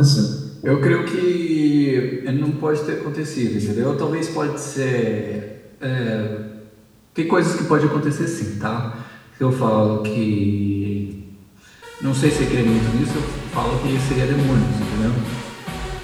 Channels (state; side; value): identical; both; correlation 1.00